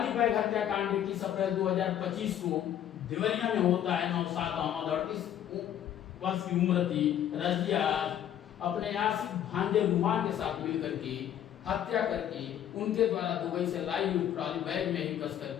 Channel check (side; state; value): right; quieter; 10.5 dB